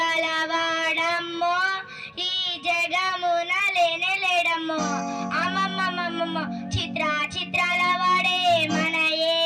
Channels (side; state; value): both; identical; correlation 1.00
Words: ఈ జగమున లేనేలేడమ్మో. అమ్మమ్మమ్మమ్మమ్మ చిత్రాల వాడే మన